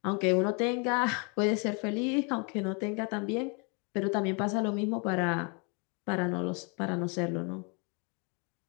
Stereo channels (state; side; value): quieter; right; 35.0 dB